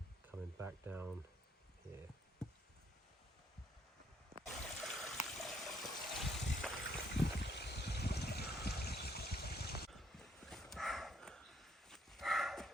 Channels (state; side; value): normal; both; correlation 0.69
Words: coming back down here.